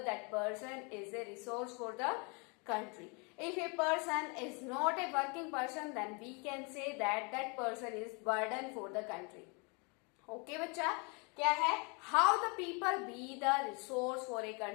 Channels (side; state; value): right; quieter; 32.5 dB